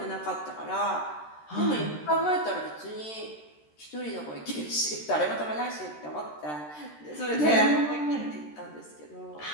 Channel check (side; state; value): right; late; 13 ms